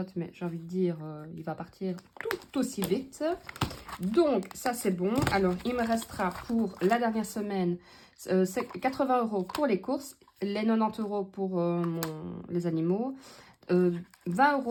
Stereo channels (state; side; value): identical; both; correlation 1.00